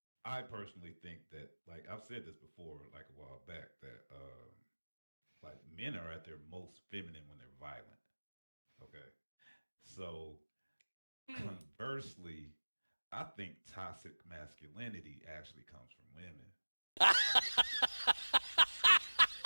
I personally think that, like I've said this before, like a while back, that like men are at their most feminine when they're violent. Okay, so Hmm. conversely, I think toxic masculinity actually comes from women.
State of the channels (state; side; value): inverted; both; correlation -1.00